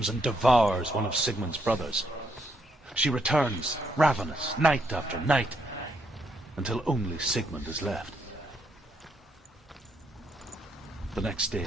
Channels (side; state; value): both; normal; correlation 0.75